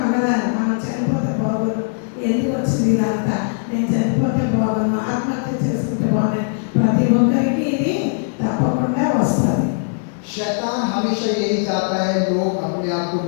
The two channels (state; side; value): silent; right; digital silence